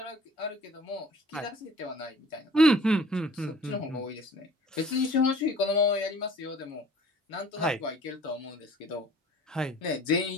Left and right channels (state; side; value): normal; both; correlation 0.50